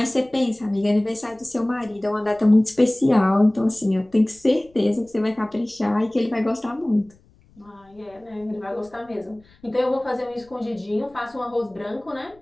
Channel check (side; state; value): left; noise; rumble, 30 dB below the sound